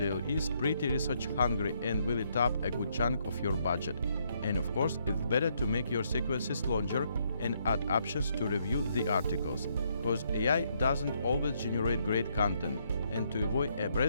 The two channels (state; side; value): inverted; both; correlation -0.73